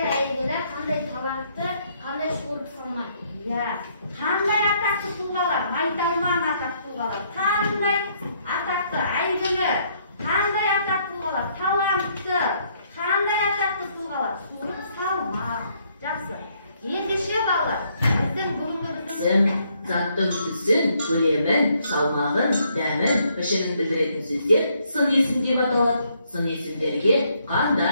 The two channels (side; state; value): both; inverted; correlation -0.70